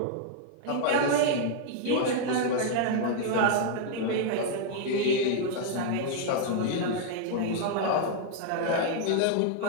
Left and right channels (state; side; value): different; both; correlation 0.00